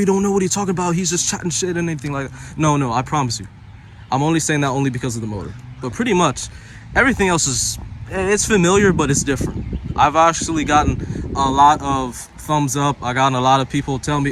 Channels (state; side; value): identical; both; correlation 1.00